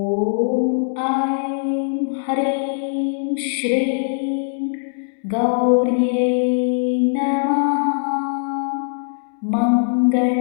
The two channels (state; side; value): silent; right; 65 dB below the other